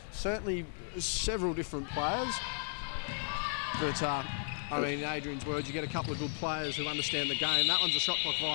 certainly several different players. But I mean, in Adrian's words, you get a couple of good players who understand the game. That one's a shot clock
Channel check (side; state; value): right; silent; digital silence